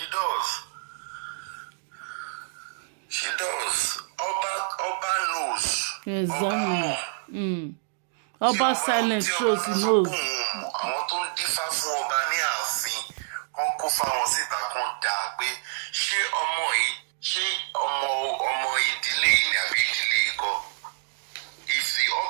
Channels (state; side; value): silent; left; digital silence